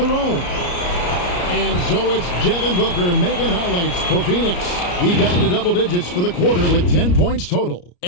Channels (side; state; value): right; late; 34 ms